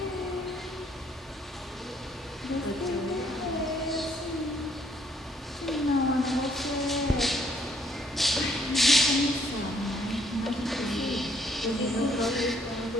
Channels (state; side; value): normal; both; correlation 0.66